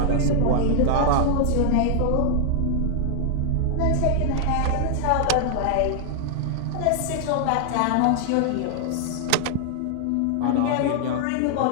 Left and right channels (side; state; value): both; different; correlation 0.00